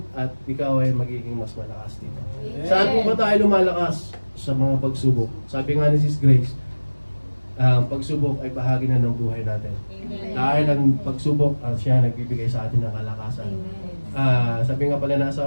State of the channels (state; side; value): inverted; both; correlation -1.00